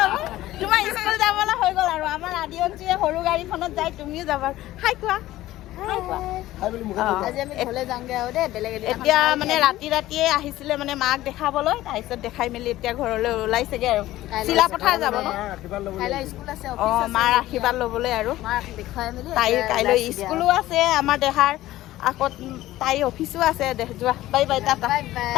তোমাৰ স্কুল যাবলৈ হৈ গ'ল আৰু আমাৰ আদি অঞ্চলে সৰু গাড়ীখনত যায় তুমিও যাবা হাই কোৱা এতিয়া মানে ৰাতিয়ে আহিছিলে মানে মাক দেখাবলৈ তাৰপিছত দেখাই মেলি এতিয়া ঘৰলৈ ওলাইছেগে আৰু চিলাপথাৰ যাব ন অঁ মাৰ আশীৰ্বাদ ল'বলৈ আৰু তাইৰ কাইলৈ স্কুলো আছে আমাৰ দেহাৰ আকৌ তাইৰ অফিচো আছে যোৱা বাই বাই টাটা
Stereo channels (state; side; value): quieter; right; 15.6 dB